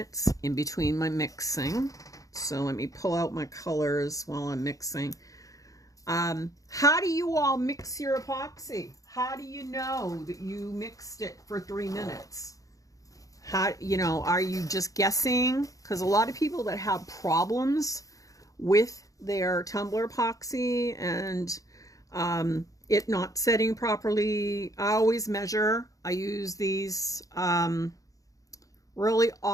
in between my mixing. So let me pull out my colors while I'm mixing. How do you all mix your epoxy? How do you know that you mixed it for 3 minutes? How, you know, are you just guessing? Because a lot of people that have problems with their Tumblr Epoxy and it not setting properly, I always measure. I use these really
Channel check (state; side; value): late; right; 0.17 ms